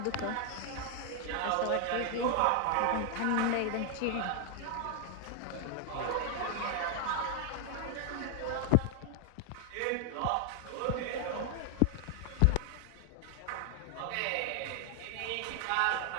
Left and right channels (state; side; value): different; both; correlation 0.00